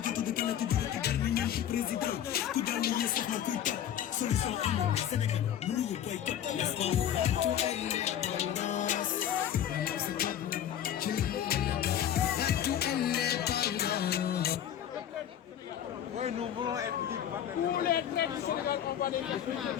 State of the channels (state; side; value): quieter; right; 10.2 dB